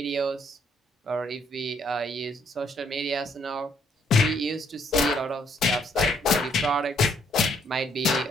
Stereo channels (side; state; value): both; normal; correlation 0.69